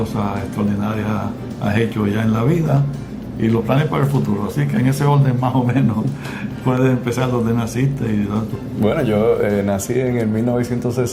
extraordinarias has hecho ya en la vida y los planes para el futuro. Así que en ese orden más o menos puedes empezar donde naciste. Bueno, yo nací en el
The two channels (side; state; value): both; identical; correlation 1.00